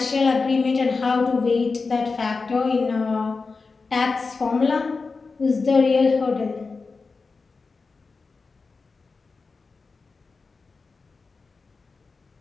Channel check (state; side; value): quieter; right; 4.3 dB